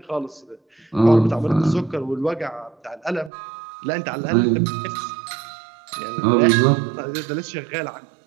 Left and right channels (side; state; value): left; drops out; at 3.3 s